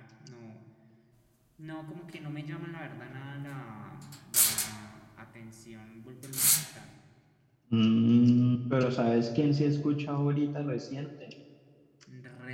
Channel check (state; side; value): identical; both; correlation 1.00